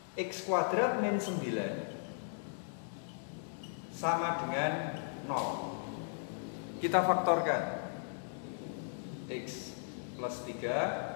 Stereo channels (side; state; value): right; silent; digital silence